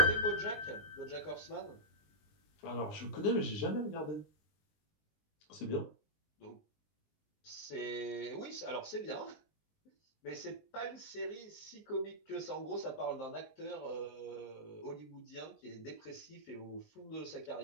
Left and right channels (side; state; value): right; late; 20 ms